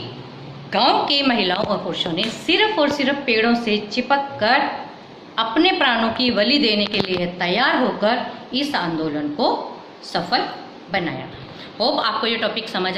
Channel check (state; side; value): identical; both; correlation 1.00